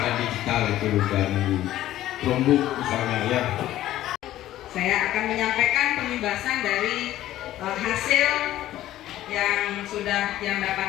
digital itu dari Chromebook misalnya ya. Saya akan menyampaikan pembahasan dari hasil yang sudah yang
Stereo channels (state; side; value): quieter; right; 13.9 dB